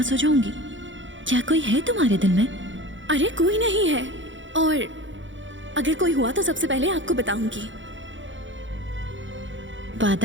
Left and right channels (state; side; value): late; left; 0.55 ms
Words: हो जाऊंगी। क्या कोई है तुम्हारे दिल में? अरे कोई नहीं है, और अगर कोई हुआ तो सबसे पहले आपको बताऊंगी।